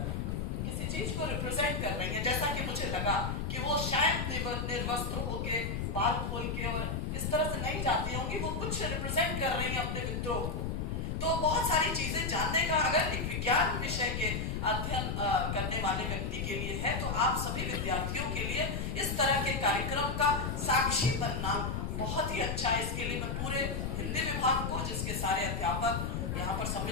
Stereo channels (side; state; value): left; noise; rumble, 2 dB below the sound